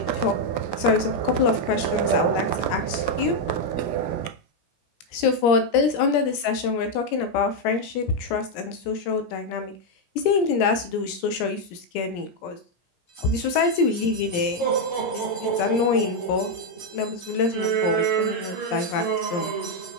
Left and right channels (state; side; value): late; right; 17 ms